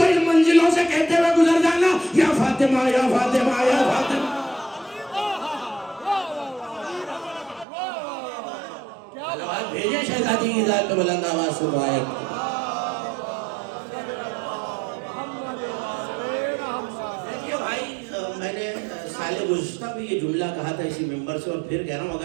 ان منزلوں سے کہتے ہوئے گزر جانا یا فاطمہ یا فاطمہ یا فاطمہ۔ صلوات بھیجیں شہزادی کی ذات پہ بلند آواز سے دعائیں۔ دیکھیے بھائی، میں نے سال گزشتہ بھی یہ جملہ کہا تھا اسی ممبر سے، اور پھر کہہ رہا ہوں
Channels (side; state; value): left; drops out; at 7.7 s